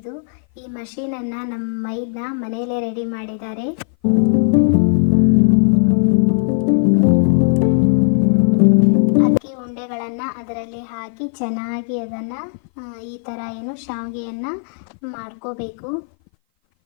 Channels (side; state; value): right; silent; 58 dB below the other